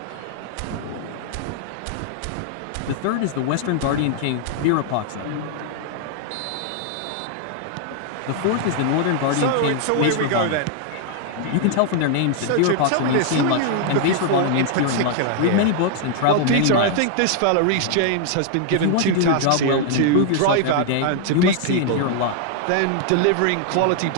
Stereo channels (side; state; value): both; different; correlation 0.00